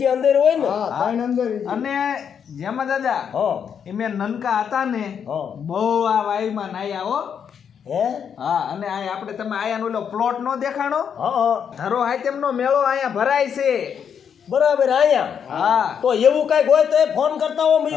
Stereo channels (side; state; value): right; quieter; 7.6 dB